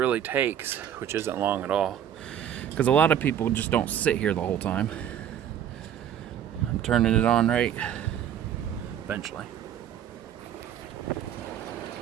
takes, which isn't long at all, because a lot of people just don't sit here the whole time. I'm turning it on right eventually.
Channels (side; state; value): left; quieter; 9.9 dB